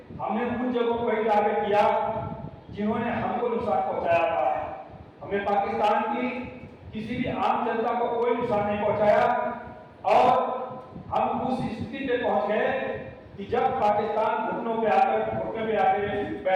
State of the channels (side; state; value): both; identical; correlation 1.00